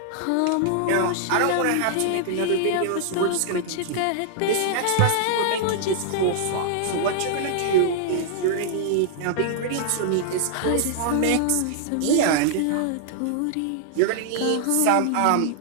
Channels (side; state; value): both; different; correlation -0.01